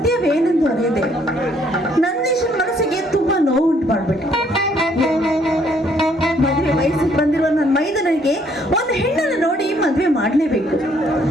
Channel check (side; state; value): both; normal; correlation 0.66